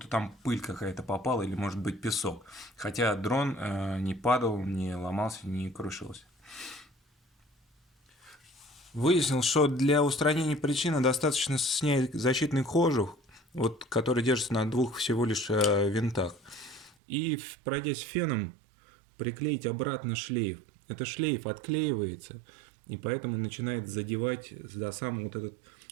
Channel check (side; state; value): left; drops out; at 16.9 s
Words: там пыль какая-то попала или, может быть, песок. Хотя дрон не падал, не ломался, не крушился. Выяснил, что для устранения причины достаточно снять защитный кожух, вот, который держится на двух всего лишь винтах. И, пройдясь феном, приклеить обратно шлейф. Этот шлейф отклеивается, и поэтому начинает задевать за сам вот этот